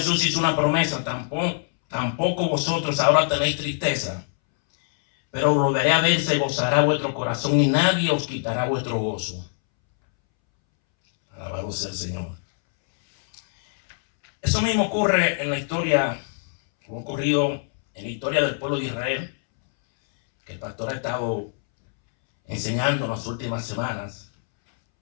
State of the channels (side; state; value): right; silent; 63 dB below the other